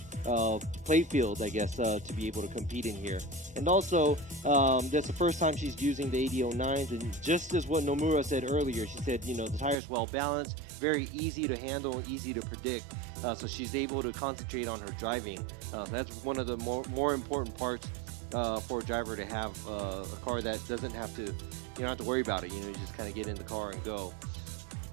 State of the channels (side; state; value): left; drops out; at 9.8 s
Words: play field, I guess, to be able to compete in here. And also, that's the first time she's using the 8009s, and just as what Nomura said earlier, she said, you know, the tire's well balanced, very easy to handle, easy to predict, so she's able to concentrate on her driving. That's one of the more important parts for a driver to have a car that doesn't have to, you don't have to worry about it. You know, you just kind of get in the car and go.